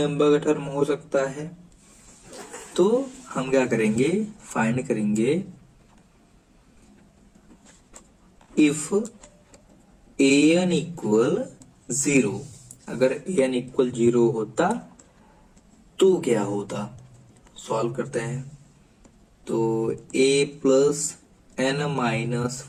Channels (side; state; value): both; identical; correlation 1.00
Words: का टर्म हो सकता है। तो हम क्या करेंगे, फाइंड करेंगे इफ an इक्वल 0, अगर an इक्वल 0 होता तो क्या होता। सॉल्व करते हैं, तो a plus n minus